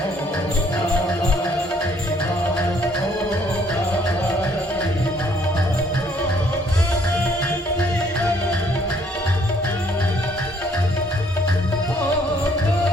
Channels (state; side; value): normal; both; correlation 0.64